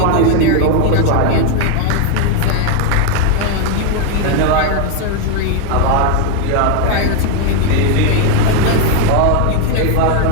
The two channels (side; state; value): both; different; correlation 0.01